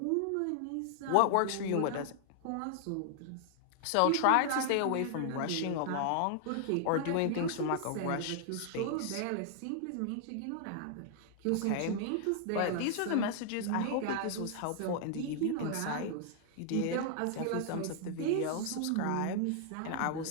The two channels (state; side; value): different; both; correlation -0.01